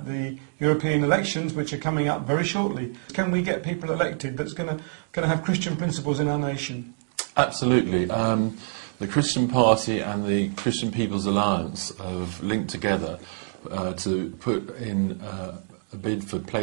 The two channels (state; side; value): silent; left; digital silence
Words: the European elections, which are coming up very shortly. Can we get people elected that's going to have Christian principles in our nation? Absolutely. The Christian Party and the Christian People's Alliance have linked together to put in a bid for